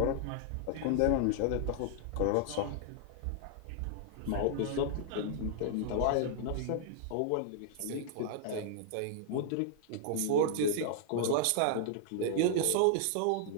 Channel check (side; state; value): both; different; correlation -0.01